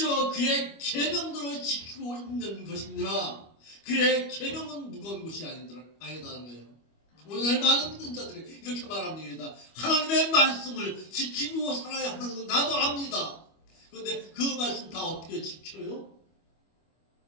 그의 계명들을 지키고 있는 것이니라. 그의 계명은 무거운 것이 아니다는 거예요. 오늘 많은 믿는 자들이 이렇게 말합니다. 하나님의 말씀을 지키고 살아야 하는 건 나도 압니다. 그런데 그 말씀 다 어떻게 지켜요?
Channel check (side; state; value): right; late; 25 ms